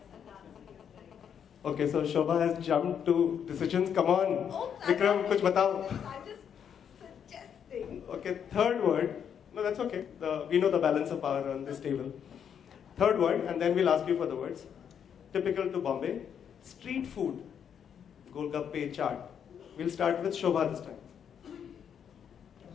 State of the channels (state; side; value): quieter; right; 8.1 dB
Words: Okay, so Shobha has jumped to decisions. Come on, Oh, Vikram, kuch batao. I'm just suggesting. Okay, third word. No, that's okay. We know the balance of power on this table. Third word, and then we'll ask you for the words. Typical to Bombay, street food. Golgappe chaat. We'll start with Shobha this time.